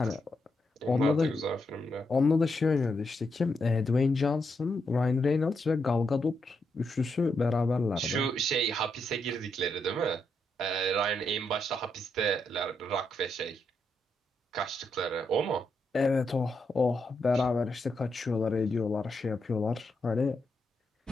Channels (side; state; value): both; normal; correlation 0.81